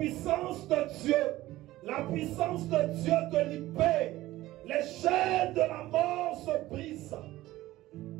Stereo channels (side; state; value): left; quieter; 16.6 dB